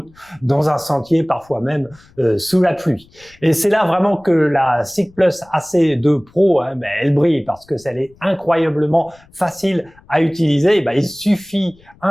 dans un sentier, parfois même sous la pluie. Et c'est là vraiment que la SICK+ AC2 Pro, elle brille parce que elle est incroyablement facile à utiliser. Il suffit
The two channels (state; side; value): noise; left; rumble, 28 dB below the sound